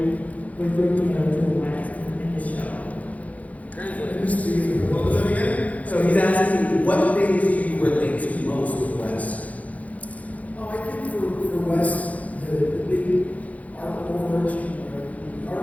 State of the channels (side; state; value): right; late; 0.070 ms